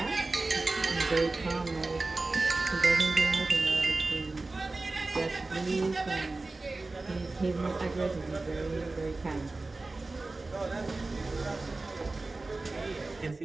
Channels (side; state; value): left; quieter; 3.3 dB